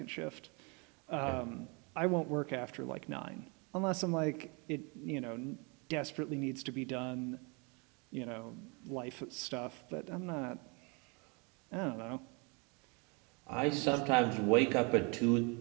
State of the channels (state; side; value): quieter; left; 31.5 dB